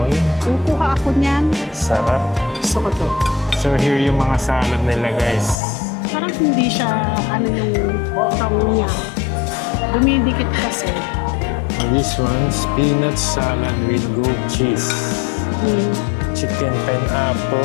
Kukuha ako niyan. Sarap. Gusto ko to. So here yung mga salad nila guys. Parang hindi siya ano yung tong niya. Dumidikit kasi. This one, peanut salad with goat cheese. Chicken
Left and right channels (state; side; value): drops out; right; at 5.6 s